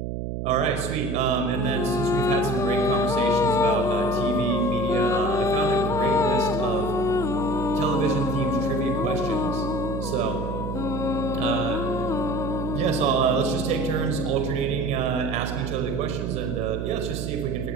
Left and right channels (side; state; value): right; noise; hum, 4 dB below the sound